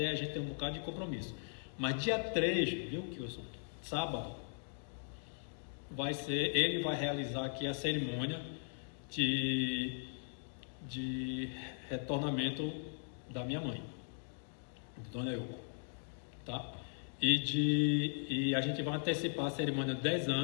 a gente tem um bocado de compromisso. Mas dia 3, viu, Kilson? Sábado, ele vai realizar aqui a cerimônia de retornamento da minha mãe, Dona Yoko, tá? E a gente vai antecipar a cerimônia de 10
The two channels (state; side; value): silent; right; digital silence